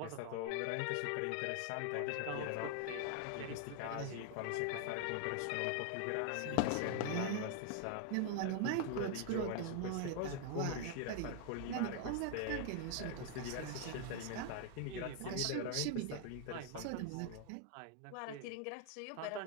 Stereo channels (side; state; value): both; different; correlation 0.00